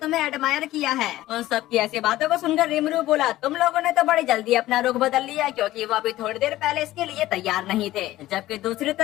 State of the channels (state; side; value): quieter; right; 15.8 dB